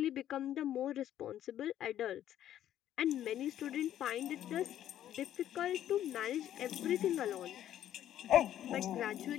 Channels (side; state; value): right; quieter; 11.5 dB